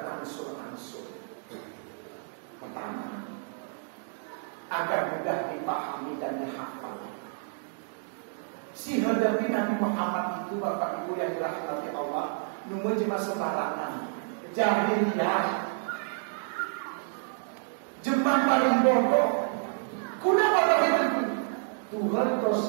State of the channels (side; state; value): left; silent; digital silence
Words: Pertama, agar mudah dipahami dan dihafal. Si hadapi Nabi Muhammad itu, Bapak Ibu yang dirahmati Allah, cuma sembarangan, jahiliyah, jemaah paling bodoh. Kenapa begitu? Tuhan proses